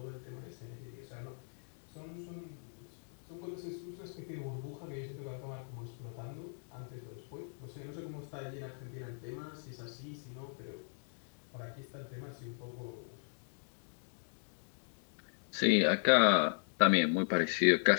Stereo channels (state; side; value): silent; right; digital silence